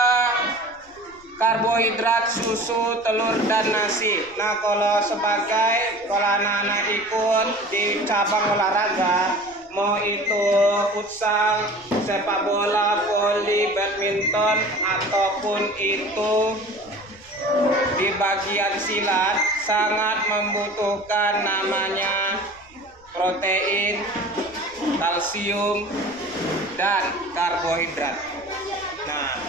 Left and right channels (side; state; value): left; noise; rumble, 28 dB below the sound